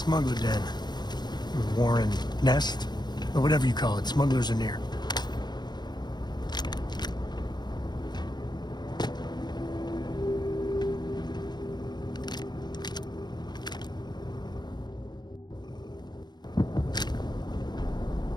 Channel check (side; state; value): right; late; 0.21 ms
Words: den. Warren nest? Or whatever you call it. Smugglers are near.